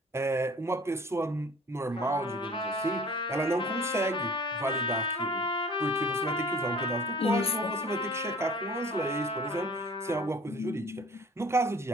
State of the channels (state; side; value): normal; both; correlation 0.48